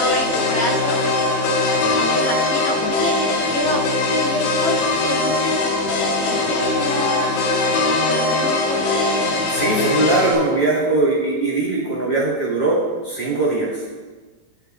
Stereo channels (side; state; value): right; late; 18 ms